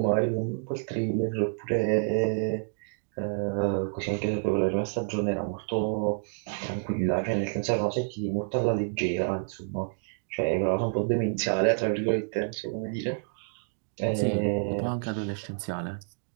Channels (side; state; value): left; silent; 59 dB below the other